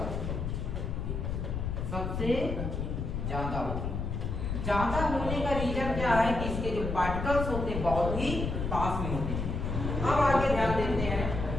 है, सबसे ज्यादा होती है। ज्यादा होने का रीजन क्या है कि इसके जो पार्टिकल्स होते हैं बहुत ही पास में होते हैं। अब आगे ध्यान देते हैं,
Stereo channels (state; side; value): noise; left; rumble, 3 dB below the sound